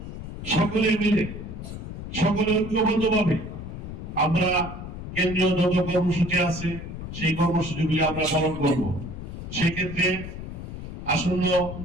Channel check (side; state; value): left; noise; rumble, 9 dB below the sound